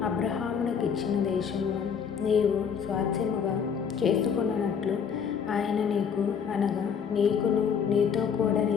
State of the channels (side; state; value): right; quieter; 7.0 dB